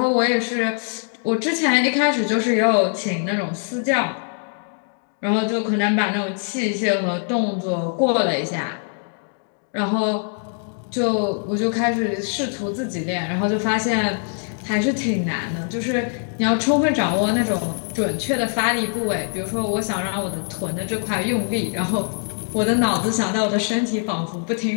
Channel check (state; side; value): silent; right; 55 dB below the other